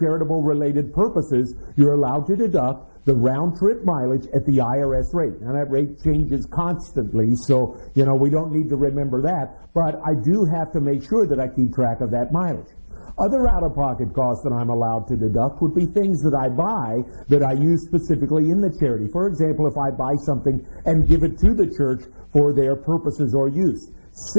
purposes, you're allowed to deduct the round-trip mileage at the IRS rate. Now, that rate changes constantly, so, we don't need to remember that, but I do have to make sure that I keep track of that mileage. Other out-of-pocket costs that I'm allowed to deduct would be things that I buy that I use specifically in the charity. For example, if I buy something and give it to the church for their purposes or use.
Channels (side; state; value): both; inverted; correlation -1.00